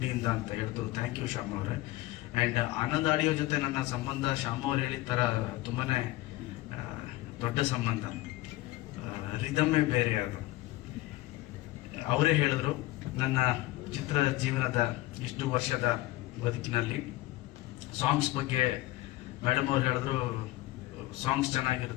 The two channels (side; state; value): right; quieter; 17.9 dB